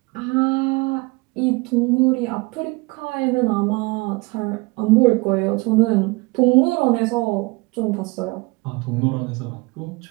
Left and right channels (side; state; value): left; quieter; 25.4 dB